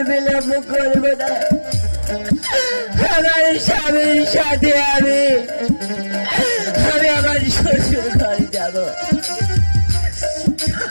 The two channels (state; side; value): inverted; both; correlation -1.00